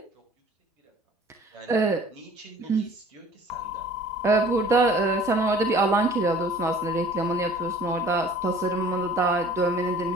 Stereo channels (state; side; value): normal; both; correlation 0.50